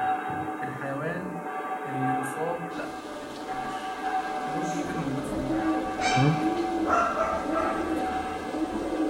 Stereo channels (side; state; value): both; identical; correlation 1.00